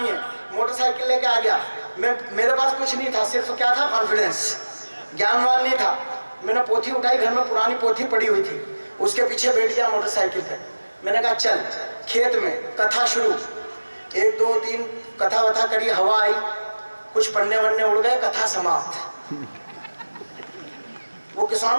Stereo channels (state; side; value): inverted; both; correlation -1.00